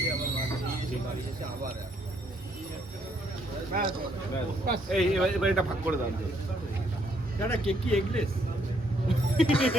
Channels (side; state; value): both; normal; correlation 0.70